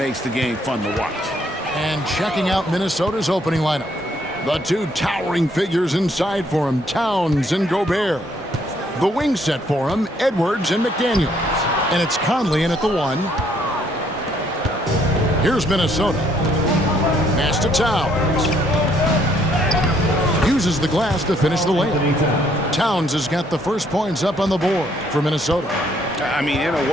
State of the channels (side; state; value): both; normal; correlation 0.67